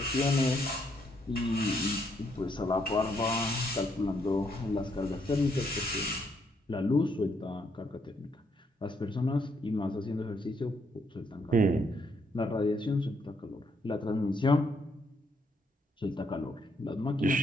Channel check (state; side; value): normal; both; correlation 0.73